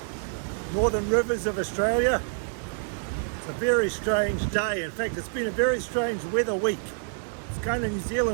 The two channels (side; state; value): left; silent; 60 dB below the other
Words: Northern Rivers of Australia. It's a very strange day. In fact, it's been a very strange weather week. It's kind of New